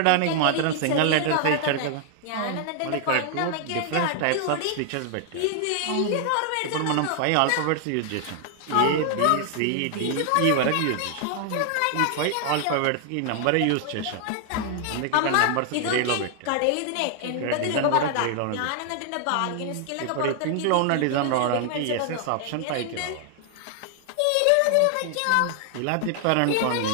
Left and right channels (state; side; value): different; both; correlation 0.00